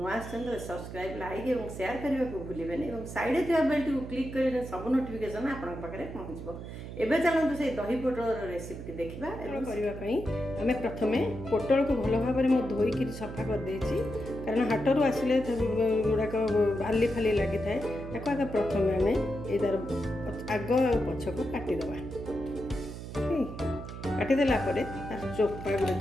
तो सब्सक्राइब लाइक और शेयर करने को भूलें और साइड थी बेल को क्लिक कर सब नोटिफिकेशन आपन पाखे पहुँचो। एवं चलते से दही पोटल रेसिपी देखा करने आम प्रथम पोटल को भल भाव में धोईक सफा कर देछि कारण हाटरू आसिले गुड़ाक बाली फाली लगी था आगे प्रथम आम यार आग पछ को काटिदेवा काटिदेला तार चोपा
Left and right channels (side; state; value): right; noise; hum, 10 dB below the sound